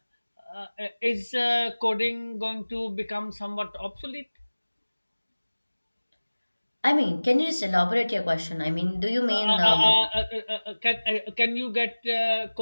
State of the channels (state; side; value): inverted; both; correlation -1.00